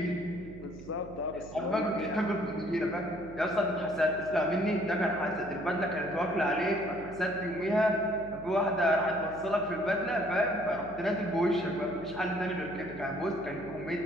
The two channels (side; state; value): right; noise; hum, 15 dB below the sound